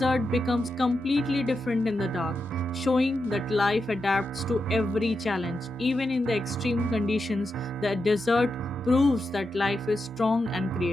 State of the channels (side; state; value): both; normal; correlation 0.87